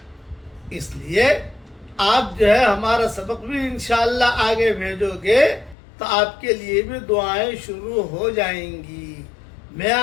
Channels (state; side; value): drops out; right; at 5.8 s